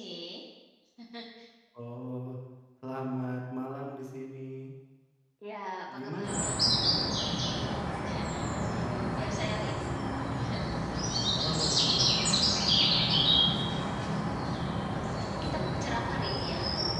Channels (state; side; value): identical; both; correlation 1.00